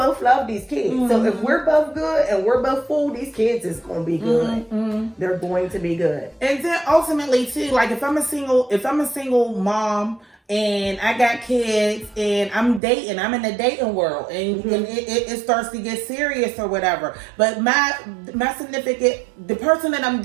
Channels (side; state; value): left; drops out; at 12.8 s